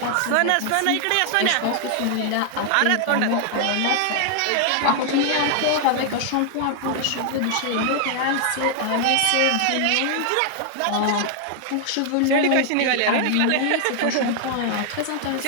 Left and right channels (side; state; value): both; different; correlation 0.00